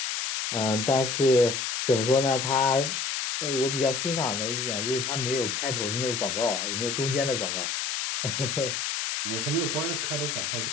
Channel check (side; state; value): left; noise; hiss, 2 dB below the sound